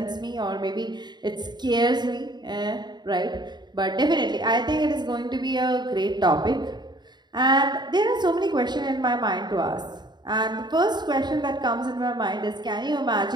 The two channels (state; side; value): late; left; 0.21 ms